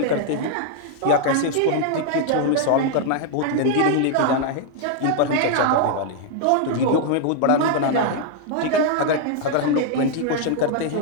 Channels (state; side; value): different; both; correlation -0.01